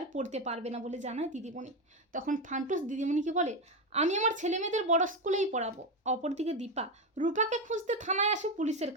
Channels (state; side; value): normal; both; correlation 0.13